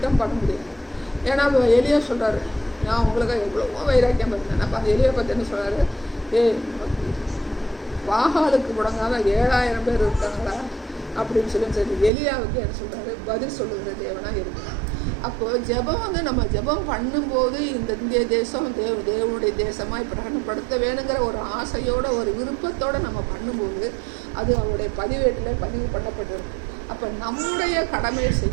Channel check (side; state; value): left; drops out; at 12.1 s